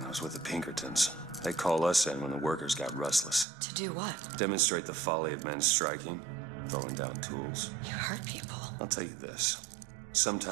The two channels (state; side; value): drops out; left; at 3.5 s